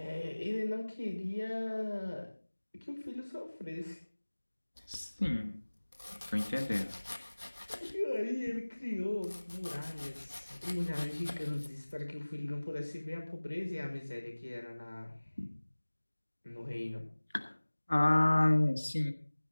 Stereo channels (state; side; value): inverted; both; correlation -1.00